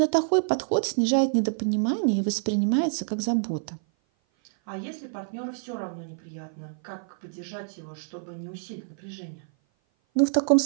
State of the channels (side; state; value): left; silent; 56 dB below the other